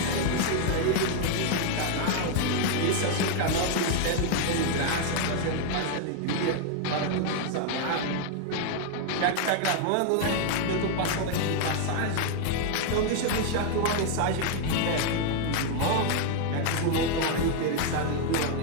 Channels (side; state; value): both; different; correlation 0.00